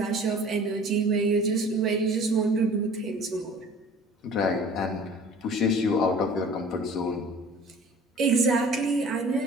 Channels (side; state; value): both; normal; correlation 0.47